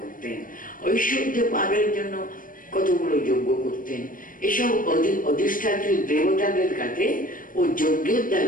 করতেন, ঐশ্বর্য পাবের জন্য কতগুলো যজ্ঞ করতেন। এসব অধিষ্ঠাত্রী দেবতাদের কাছে ও যজ্ঞের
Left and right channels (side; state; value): right; late; 0.40 ms